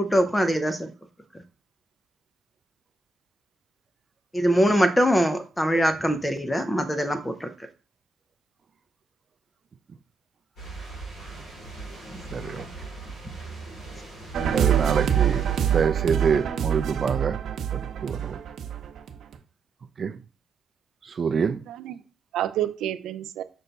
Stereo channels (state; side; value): quieter; left; 3.5 dB